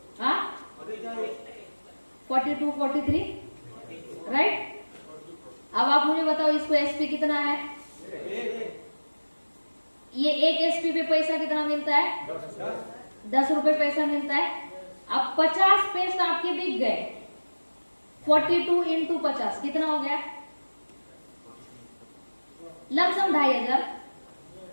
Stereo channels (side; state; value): both; inverted; correlation -1.00